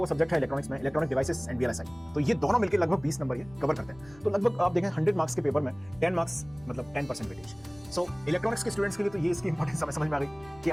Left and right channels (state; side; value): noise; left; rumble, 25 dB below the sound